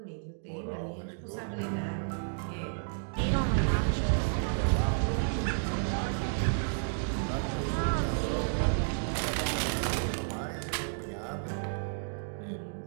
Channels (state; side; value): silent; left; digital silence